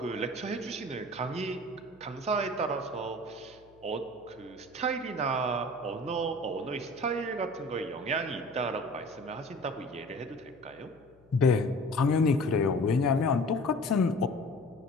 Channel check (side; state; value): left; noise; hum, 29 dB below the sound